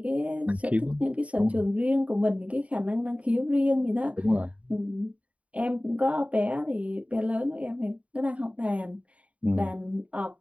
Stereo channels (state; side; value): late; left; 0.066 ms